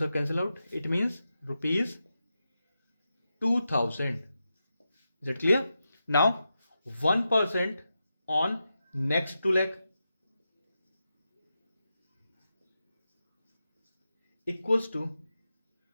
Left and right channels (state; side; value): inverted; both; correlation -0.89